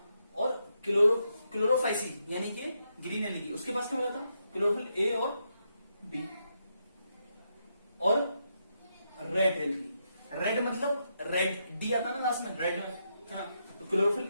और क्लोरोफाइसी यानी कि ग्रीन एल्गी, उसके पास क्या मिला था, क्लोरोफिल ए और बी। और रेड एल्गी, रेड मतलब रेड, डी आता है ना लास्ट में, रेड में, है ना। तो क्लोरोफिल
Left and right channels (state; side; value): inverted; both; correlation -0.81